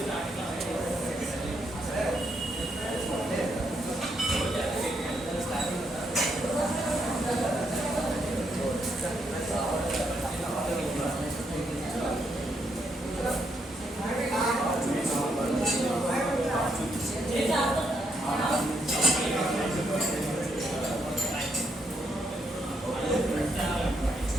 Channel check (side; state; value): both; normal; correlation 0.77